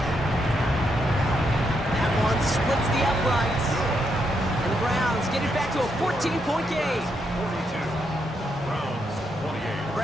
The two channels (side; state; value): both; normal; correlation 0.79